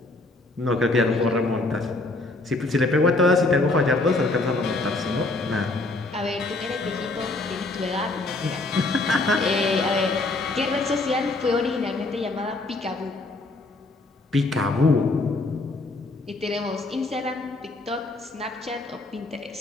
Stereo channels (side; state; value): right; quieter; 3.1 dB